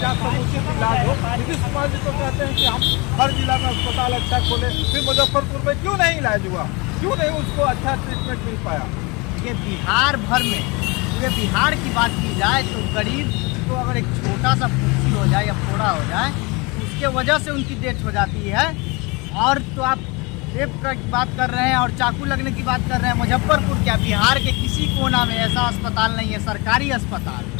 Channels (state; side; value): quieter; right; 27.2 dB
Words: समुचित इलाज हो। नीतीश कुमार जी तो कहते हैं कि हम हर जिला में अस्पताल अच्छा खोले, फिर मुजफ्फरपुर में क्यों नहीं इलाज हुआ, क्यों नहीं उसको अच्छा ट्रीटमेंट मिल पाया? ये बिहार भर में, पूरे बिहार की बात की जाए तो गरीब को अगर एक छोटा सा फुंसी हो जाए या फोड़ा हो जाए तो उसके वजह से उनकी डेथ हो जाती है। और तो आप रेप की बात कर रहे हैं और चाकू लगने की बात कर रहे हैं। मुजफ्फरपुर क्या, बिहार के किसी कोना में ऐसा अस्पताल नहीं है, सरकारी अस्पताल,